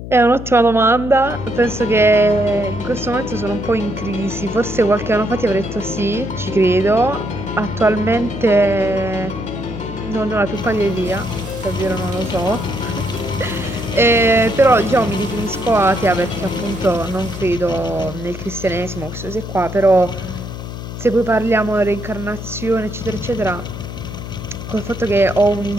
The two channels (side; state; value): left; noise; hum, 10 dB below the sound